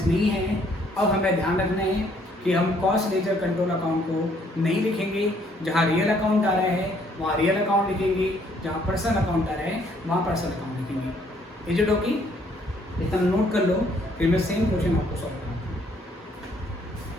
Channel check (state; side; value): normal; both; correlation 0.65